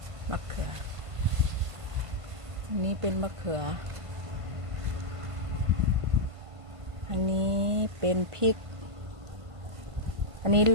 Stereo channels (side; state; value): left; late; 1.5 ms